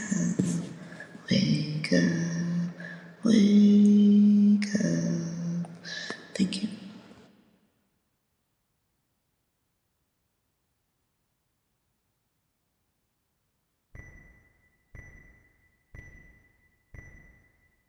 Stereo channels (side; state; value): both; identical; correlation 1.00